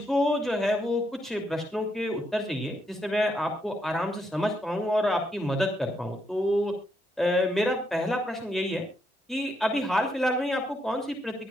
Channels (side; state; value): both; normal; correlation 0.78